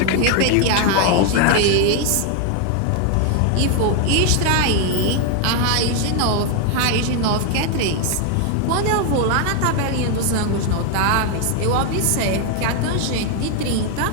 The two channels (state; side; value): different; both; correlation 0.01